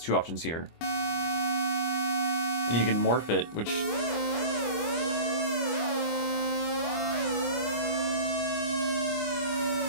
2 options here. And you can morph it, which...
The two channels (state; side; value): late; right; 25 ms